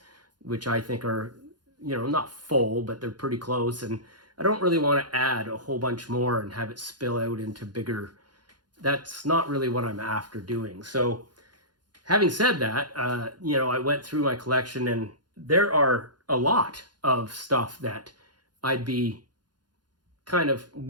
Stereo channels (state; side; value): late; left; 0.70 ms